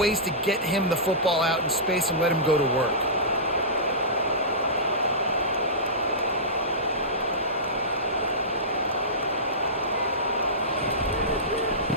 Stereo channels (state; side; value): normal; both; correlation -0.19